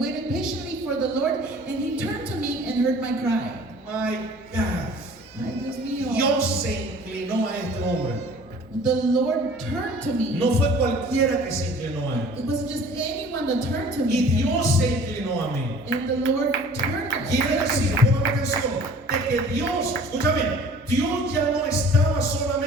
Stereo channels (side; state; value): both; normal; correlation 0.48